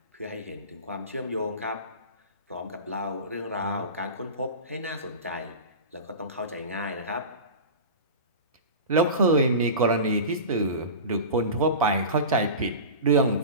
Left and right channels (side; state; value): both; inverted; correlation -0.30